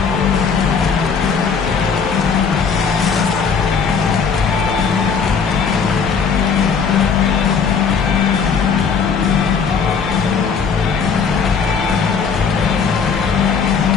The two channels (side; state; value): right; quieter; 5.9 dB